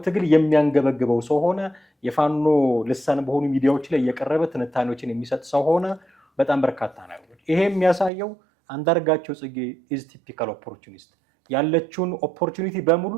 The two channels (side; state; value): left; drops out; at 8.1 s